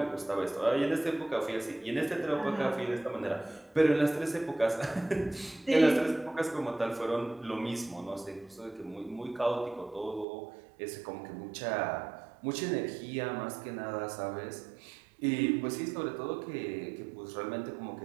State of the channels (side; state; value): left; drops out; at 10.2 s